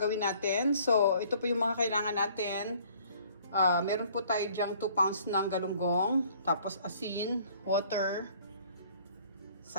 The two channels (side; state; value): both; inverted; correlation -0.57